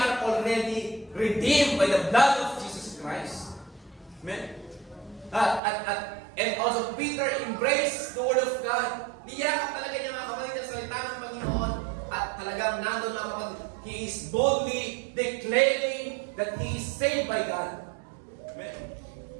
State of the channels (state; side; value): drops out; left; at 5.6 s